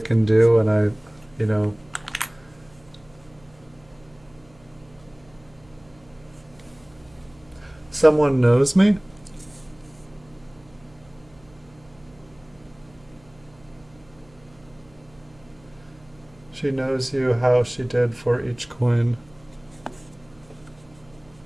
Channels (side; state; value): right; noise; hum, 27 dB below the sound